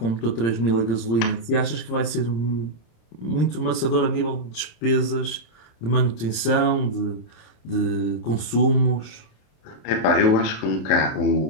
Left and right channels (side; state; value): right; late; 26 ms